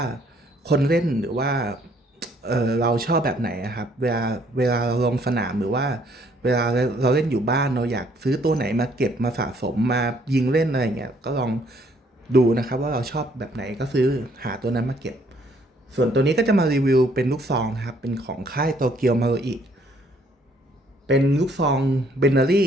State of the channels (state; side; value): normal; both; correlation 0.65